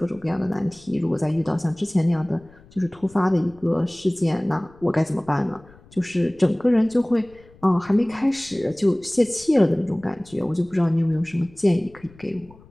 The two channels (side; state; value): left; noise; rumble, 25 dB below the sound